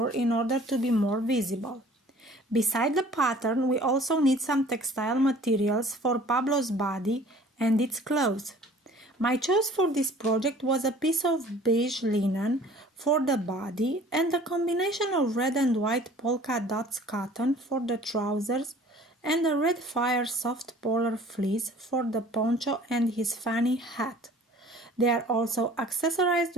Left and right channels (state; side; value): normal; both; correlation 0.50